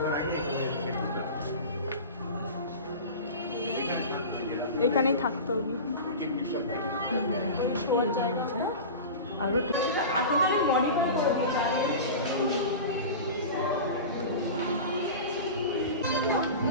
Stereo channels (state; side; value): inverted; both; correlation -0.31